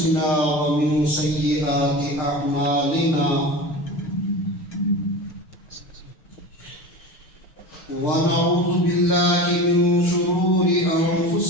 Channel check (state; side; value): late; right; 6.6 ms